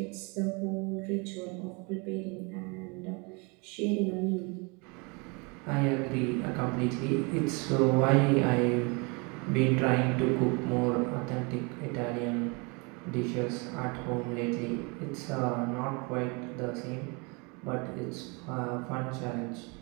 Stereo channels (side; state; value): left; quieter; 30.6 dB